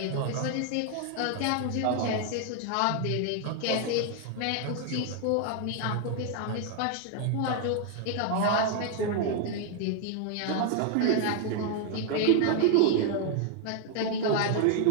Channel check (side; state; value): both; different; correlation 0.00